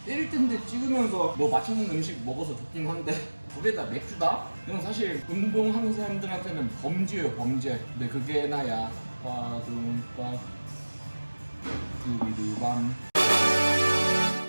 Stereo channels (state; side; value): inverted; both; correlation -1.00